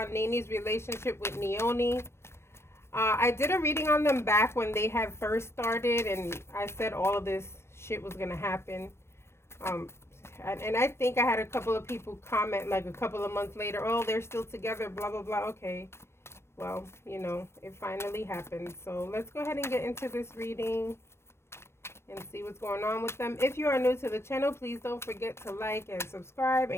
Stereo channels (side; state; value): right; late; 0.12 ms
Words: Nene's relationship with Nyoni. I did a reading on them back when they had first started, and I said all of this shit was going to happen. And I think I had a couple of people comment like a couple of months later, oh, they're still together, blah, blah, blah. Okay. Well, you know, it finally happened. So let's go ahead and get into this reading and see what's going on with them. If you are new to the channel, please don't forget to like and subscribe